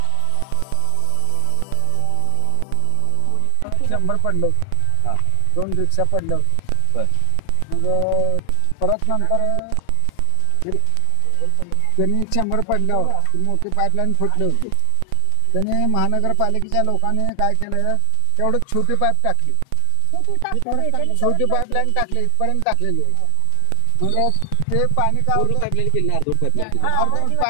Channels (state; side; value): different; both; correlation 0.00